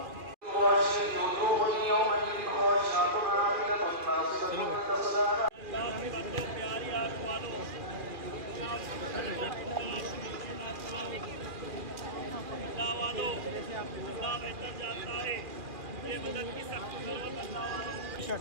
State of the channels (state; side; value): late; left; 2.4 ms